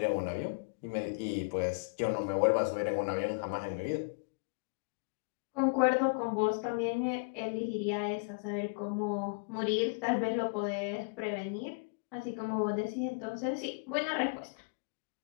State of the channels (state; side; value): quieter; right; 36.2 dB